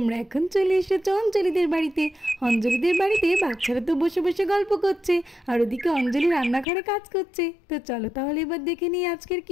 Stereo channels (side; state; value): right; drops out; at 6.7 s